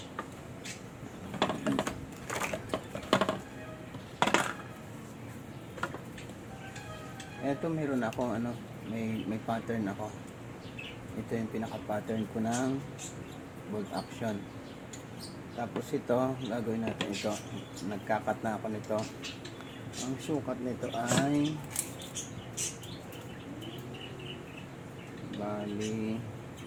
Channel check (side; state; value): both; identical; correlation 1.00